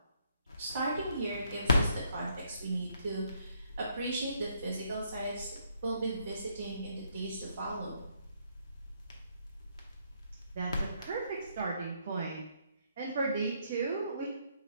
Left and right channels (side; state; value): both; inverted; correlation -0.73